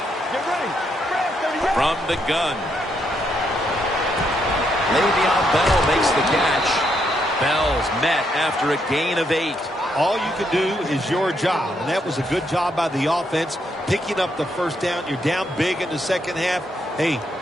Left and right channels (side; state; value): both; normal; correlation 0.77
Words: Get ready. From the gun. Le'Veon Bell makes the catch. Bell's met after a gain of 8. All you can do is your job, and that was a good job by the offense, picking up the first down. You're down big in the second half. Hey,